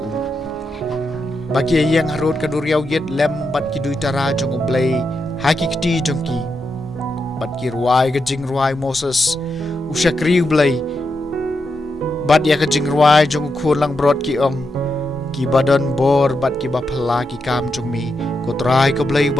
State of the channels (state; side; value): normal; both; correlation 0.85